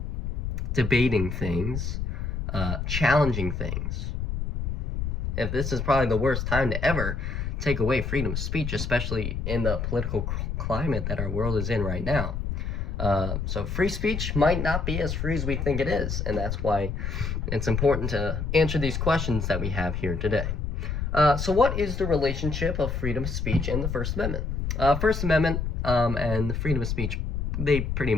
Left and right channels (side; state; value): left; noise; rumble, 2 dB below the sound